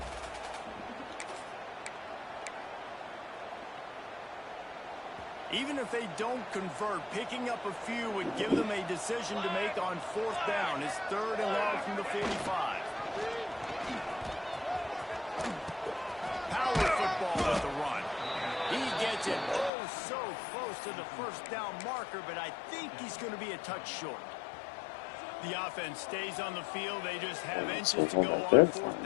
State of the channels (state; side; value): drops out; right; at 19.7 s